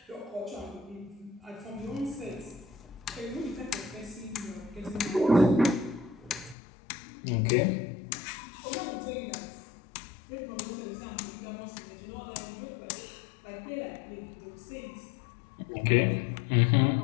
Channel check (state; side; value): drops out; right; at 6.6 s